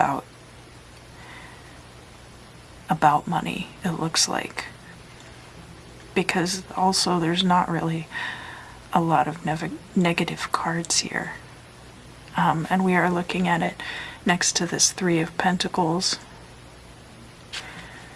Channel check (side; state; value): both; identical; correlation 1.00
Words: money, it looks like. Because also there's not really a lot of negative cards here. And we are looking at it next to this Three of Pentacles,